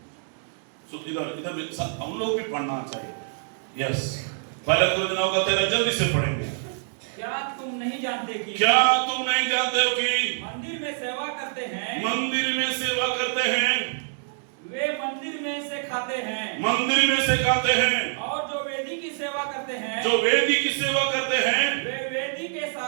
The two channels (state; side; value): silent; left; 61 dB below the other